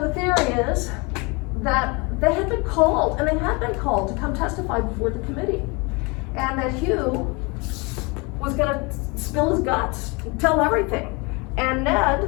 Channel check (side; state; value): right; quieter; 28.5 dB